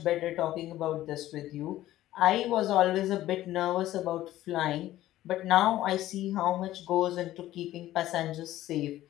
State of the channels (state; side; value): quieter; right; 14.5 dB